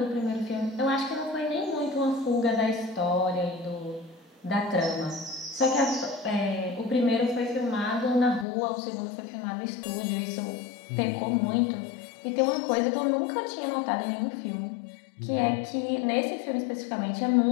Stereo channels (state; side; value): drops out; right; at 8.5 s